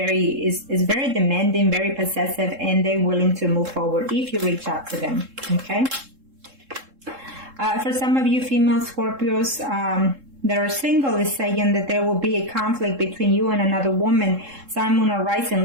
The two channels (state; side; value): late; left; 3.7 ms